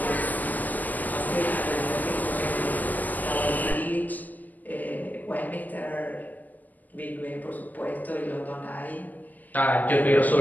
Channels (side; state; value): right; late; 0.082 ms